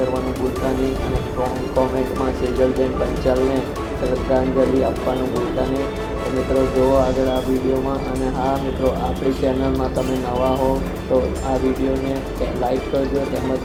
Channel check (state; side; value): identical; both; correlation 1.00